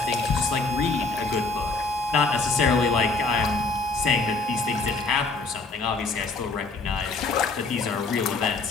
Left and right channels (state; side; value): quieter; right; 3.7 dB